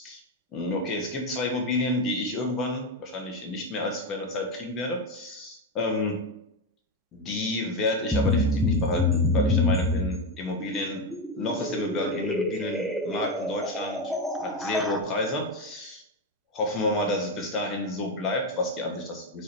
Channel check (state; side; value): normal; both; correlation 0.10